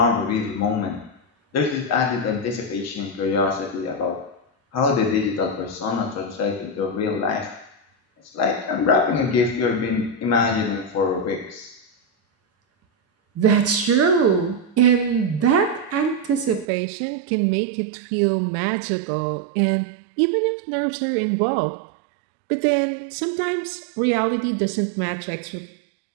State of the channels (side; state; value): left; drops out; at 16.7 s